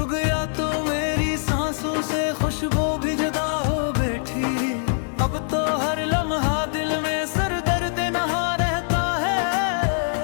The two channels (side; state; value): right; silent; digital silence